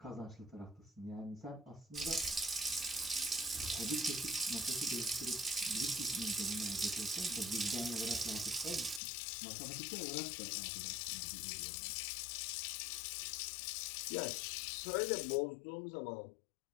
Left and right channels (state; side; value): drops out; right; at 9.0 s